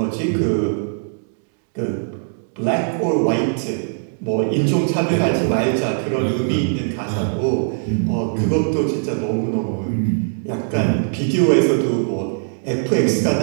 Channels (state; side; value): silent; left; digital silence